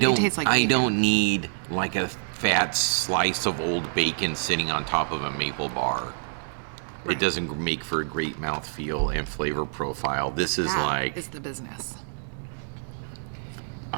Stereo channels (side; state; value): left; silent; 60 dB below the other